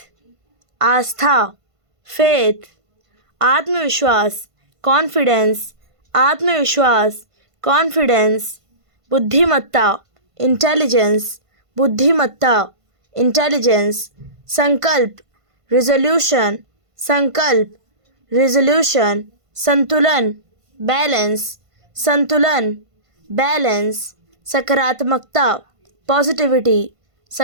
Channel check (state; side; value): late; left; 1.5 ms